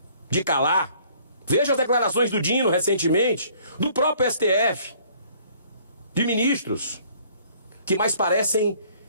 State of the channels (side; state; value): both; inverted; correlation -0.58